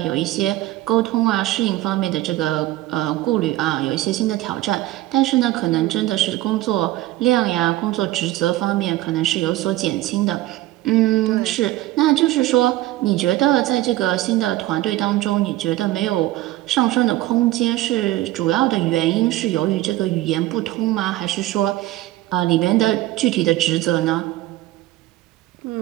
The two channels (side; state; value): left; quieter; 16.2 dB